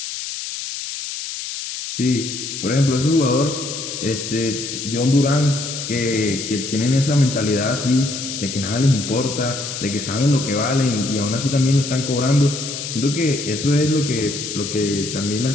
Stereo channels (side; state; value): left; noise; hiss, 6 dB below the sound